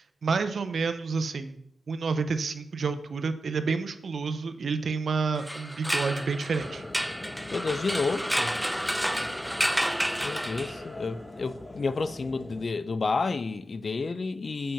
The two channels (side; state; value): both; normal; correlation 0.90